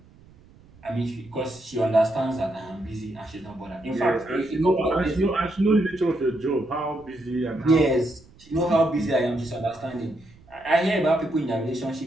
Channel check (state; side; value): noise; right; rumble, 26 dB below the sound